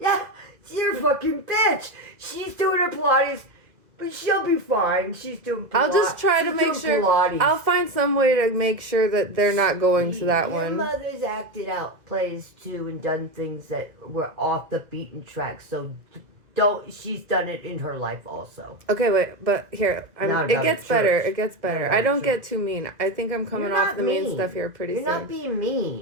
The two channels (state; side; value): late; left; 2.0 ms